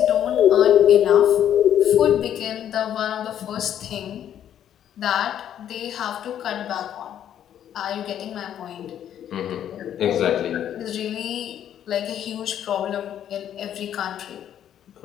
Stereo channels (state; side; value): quieter; right; 10.2 dB